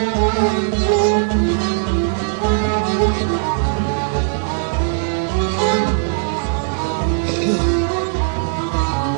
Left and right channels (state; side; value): silent; left; digital silence